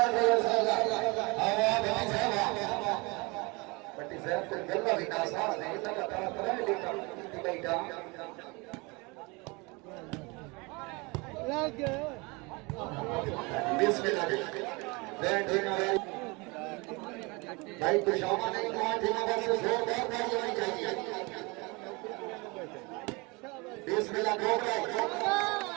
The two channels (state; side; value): quieter; left; 27.0 dB